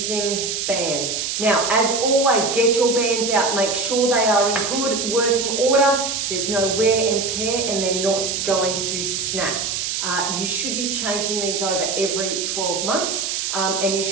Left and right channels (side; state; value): right; noise; hiss, 2 dB below the sound